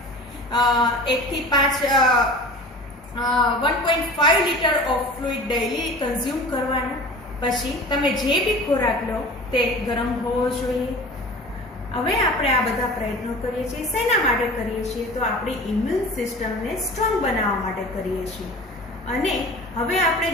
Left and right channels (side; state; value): both; normal; correlation 0.39